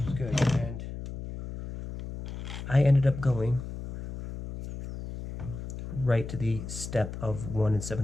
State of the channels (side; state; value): left; noise; hum, 9 dB below the sound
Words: good, and I ended up going right to the step of 1